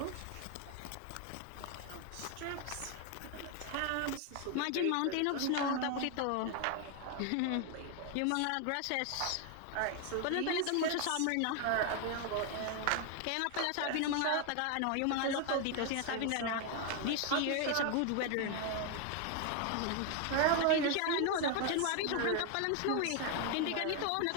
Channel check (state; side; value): different; both; correlation 0.01